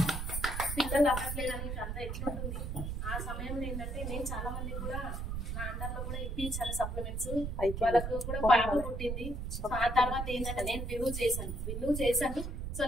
పిల్లలు అవ్వట్లేదని అంతా ఎట్లుంటుంది. ఆ సమయంలో ఏంటంటే నేను చాలా మంది కూడా నా అండర్లో కూడా ఇప్పించాను సప్లిమెంట్స్, వాళ్ళకు కూడా పాప పుట్టింది. సో ఆ తర్వాత ఏంటంటే నేను బిల్లు చేశాను. సో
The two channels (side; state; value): right; noise; rumble, 4 dB below the sound